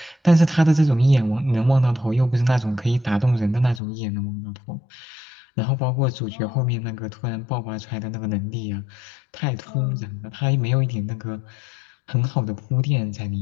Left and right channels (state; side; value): drops out; right; at 3.8 s